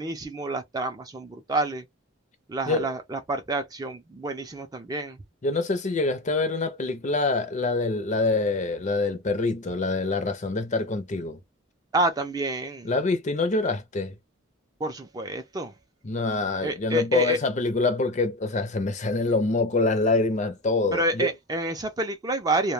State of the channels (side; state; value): both; normal; correlation 0.23